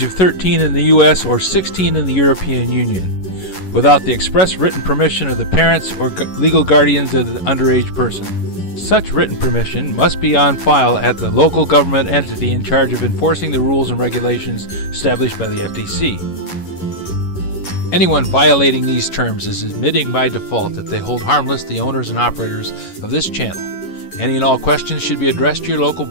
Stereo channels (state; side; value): late; right; 11 ms